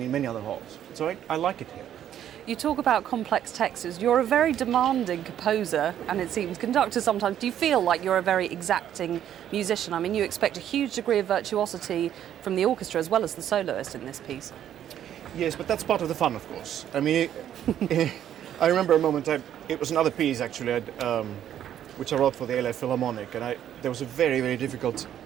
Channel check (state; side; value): quieter; left; 10.6 dB